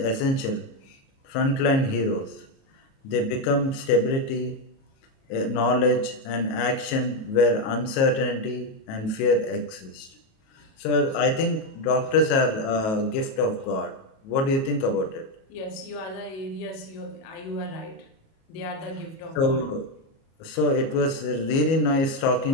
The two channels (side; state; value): right; late; 37 ms